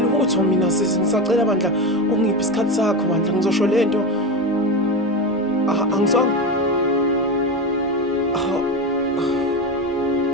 mina sisi, ngisacela bandla ungiphe isikhathi sakho bandla, ngizosho lento. Angizwanga.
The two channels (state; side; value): normal; both; correlation 0.18